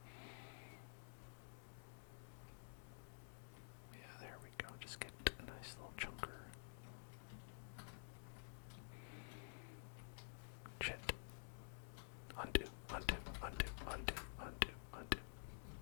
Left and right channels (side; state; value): right; silent; digital silence